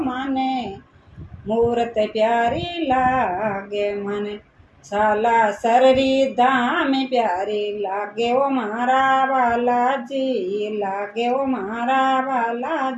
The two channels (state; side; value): identical; both; correlation 1.00